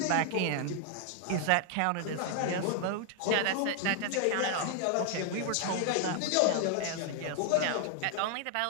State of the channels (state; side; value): different; both; correlation 0.00